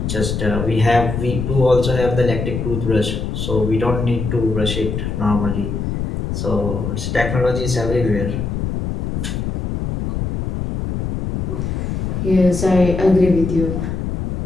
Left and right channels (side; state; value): left; noise; rumble, 3 dB below the sound